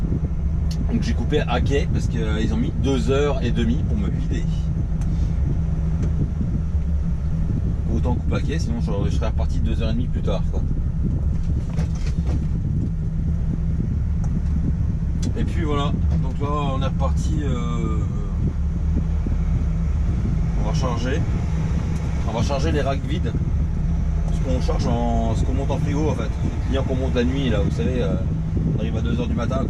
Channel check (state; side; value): identical; both; correlation 1.00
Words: Donc j'ai coupé à quai parce qu'ils ont mis 2h30 pour me vider. Autant couper à quai, sinon je serais reparti 2h30 plus tard, quoi. Et puis voilà, donc là on est reparti, on va charger les racks vides, ce qu'on monte en frigo en fait, les clients qu'on monte la nuit là, vous savez, on arrive à 2h du matin,